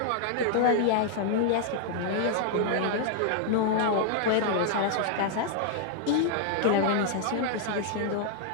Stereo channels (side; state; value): both; different; correlation -0.01